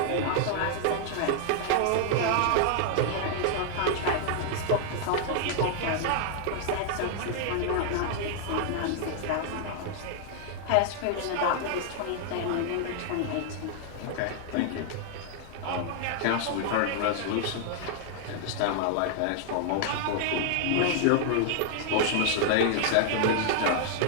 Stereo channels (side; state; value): both; different; correlation 0.00